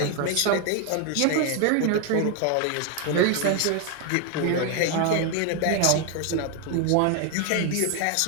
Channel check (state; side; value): different; both; correlation 0.01